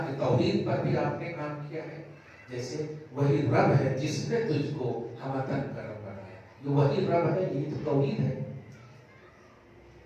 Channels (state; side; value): identical; both; correlation 1.00